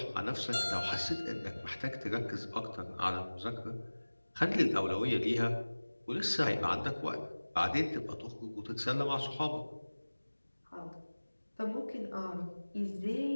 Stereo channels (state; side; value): inverted; both; correlation -1.00